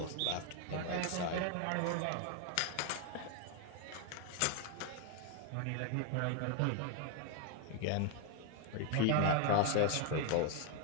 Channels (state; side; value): different; both; correlation 0.01